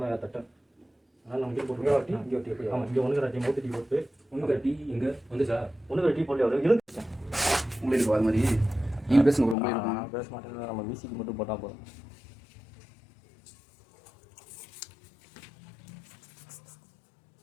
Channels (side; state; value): right; drops out; at 9.6 s